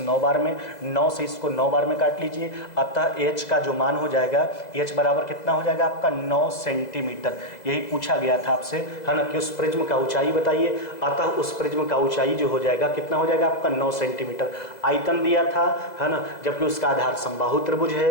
बार में, 9 से इसको 9 बार में काट लीजिए, अतः h का जो मान हो जाएगा h बराबर कितना हो जाएगा आपका 9 सेंटीमीटर। यही पूछा गया था आपसे, है ना, कि उस प्रिज्म का ऊंचाई बताइए, अतः उस प्रिज्म का ऊंचाई जो हो जाएगा कितना हो जाएगा आपका 9 सेंटीमीटर। आयतन दिया था, है ना, जबकि उसका आधार समबाहु त्रिभुज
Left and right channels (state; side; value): late; right; 2.0 ms